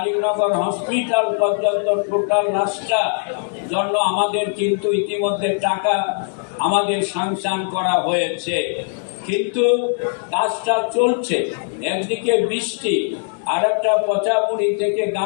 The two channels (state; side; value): silent; right; digital silence